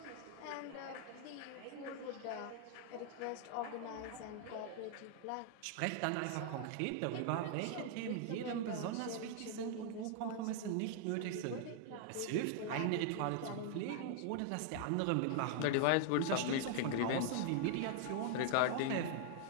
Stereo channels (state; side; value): different; both; correlation 0.00